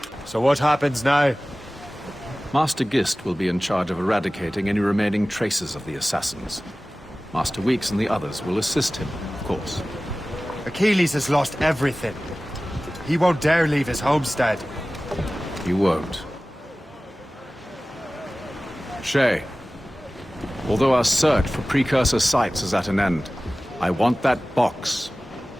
So what happens now? Master Gist will be in charge of eradicating any remaining traces of the assassins. Master Weeks and the others will assist him, of course. Achilles has lost everything. He won't dare leave his homestead. You won't. Shay, although our search for precursor sites is at an end, I want that box.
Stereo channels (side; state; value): both; normal; correlation 0.97